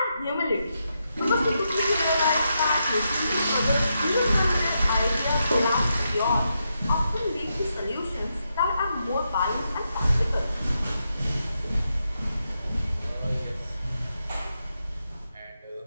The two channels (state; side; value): inverted; both; correlation -0.84